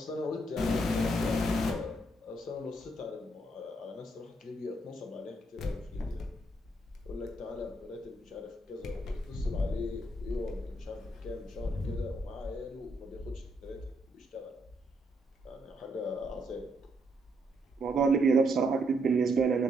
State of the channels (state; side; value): normal; both; correlation 0.75